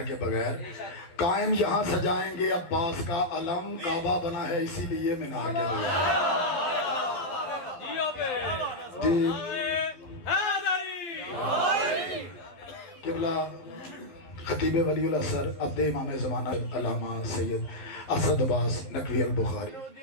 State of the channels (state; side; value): late; right; 12 ms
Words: کے بغیر. قائم یہاں سجائیں گے عباس کا علم، کعبہ بنا ہے اسی لیے مینار کے بغیر. جی قبلہ خطیب ولی الاسر عبد امام زمانہ علامہ سید اسد عباس نقوی البخاری.